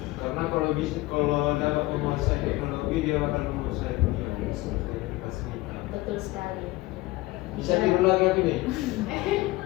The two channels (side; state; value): right; quieter; 19.7 dB